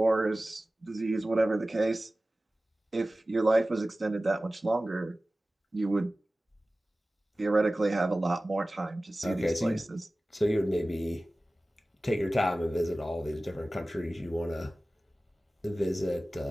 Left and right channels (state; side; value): normal; both; correlation 0.97